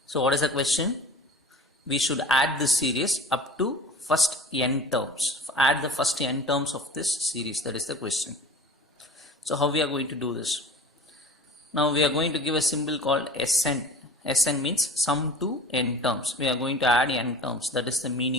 So what is the question? We should add this series up to first n terms. Add the first n terms of this series. That is the question. So how we are going to do this? Now we are going to give a symbol called Sn. Sn means sum to n terms. We are going to add n terms. That is the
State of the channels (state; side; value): normal; both; correlation 0.40